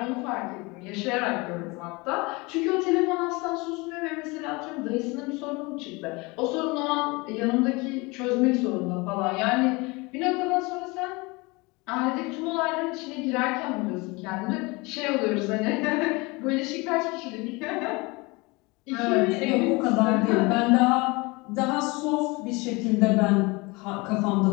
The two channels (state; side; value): quieter; right; 25.5 dB